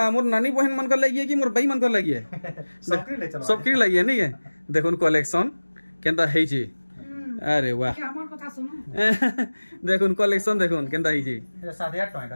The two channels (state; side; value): inverted; both; correlation -1.00